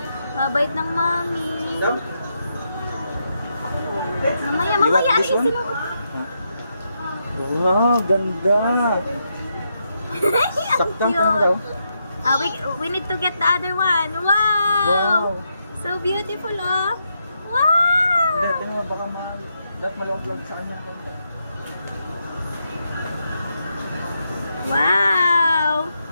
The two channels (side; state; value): both; inverted; correlation -0.82